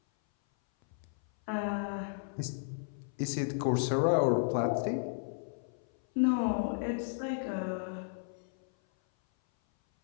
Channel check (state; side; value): silent; right; 55 dB below the other